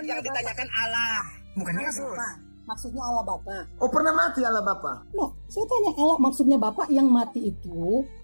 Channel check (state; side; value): inverted; both; correlation -1.00